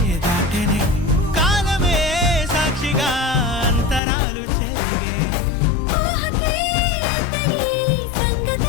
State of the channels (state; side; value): drops out; right; at 4.0 s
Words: దాటెనే కాలమే సాక్షిగా అంతరాలు చెరిగే ఊహకే అందని